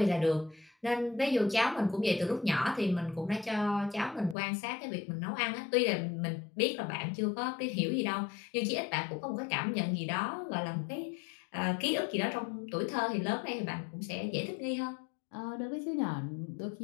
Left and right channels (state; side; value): drops out; right; at 4.4 s